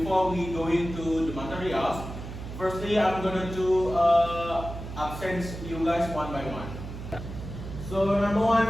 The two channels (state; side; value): noise; right; hum, 9 dB below the sound